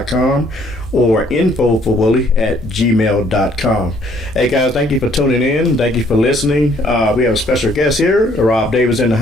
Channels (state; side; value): normal; both; correlation 0.63